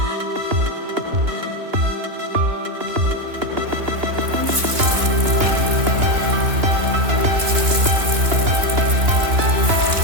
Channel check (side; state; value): left; late; 3.1 ms